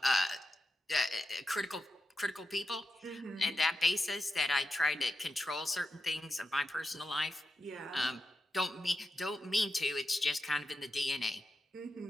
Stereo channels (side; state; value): both; normal; correlation 0.87